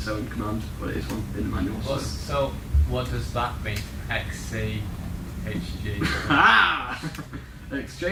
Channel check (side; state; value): both; identical; correlation 1.00